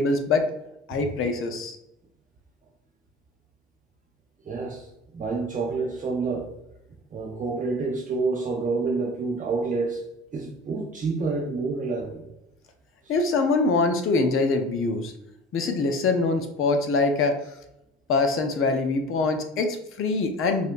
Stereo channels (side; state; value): both; normal; correlation 0.38